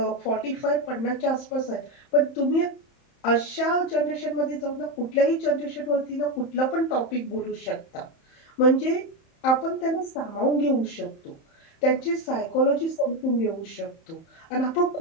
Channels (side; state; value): right; late; 31 ms